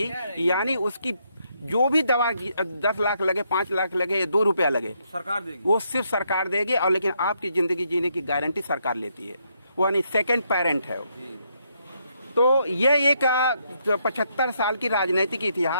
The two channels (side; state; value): both; inverted; correlation -0.75